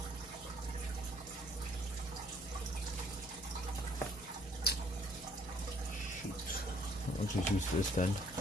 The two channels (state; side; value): normal; both; correlation 0.62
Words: Shoot. I'll just use this then.